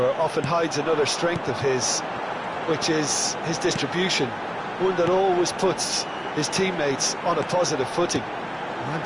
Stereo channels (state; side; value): identical; both; correlation 1.00